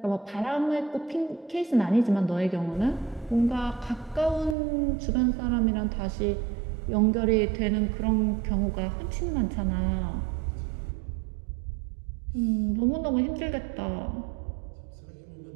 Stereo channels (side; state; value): left; drops out; at 4.5 s